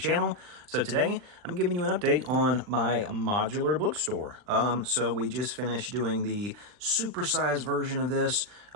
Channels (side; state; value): left; late; 39 ms